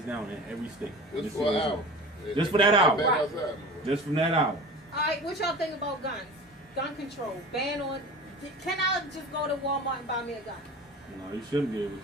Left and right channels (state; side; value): normal; both; correlation 0.36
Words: down in every state. Just for an hour. Just for that hour. Right. Outside. Just from that hour. All right, what y'all think about guns? Gun control, ban on. Can I just go to Walmart and buy me a gun? No, you shouldn't be able You